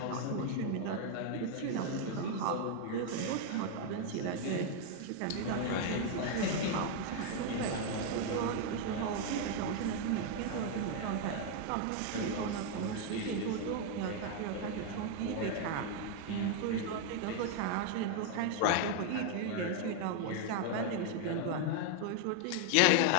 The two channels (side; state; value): both; different; correlation 0.01